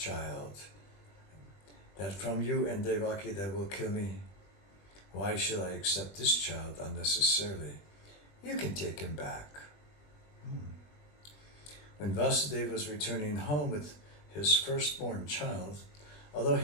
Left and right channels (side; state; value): right; late; 20 ms